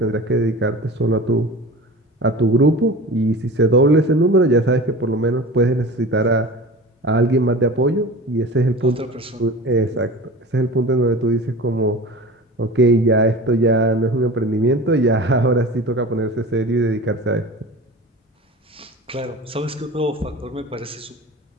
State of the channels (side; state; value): both; normal; correlation 0.35